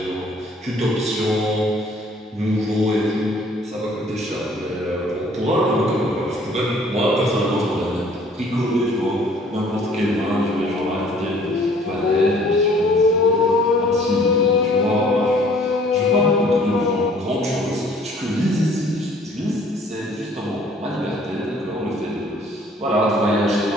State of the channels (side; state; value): both; normal; correlation 0.57